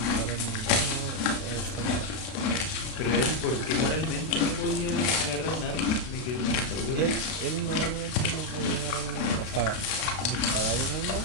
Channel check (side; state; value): right; late; 32 ms